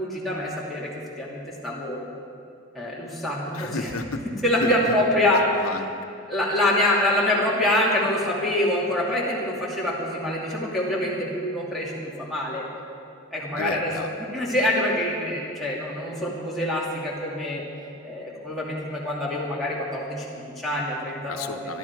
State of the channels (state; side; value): normal; both; correlation 0.27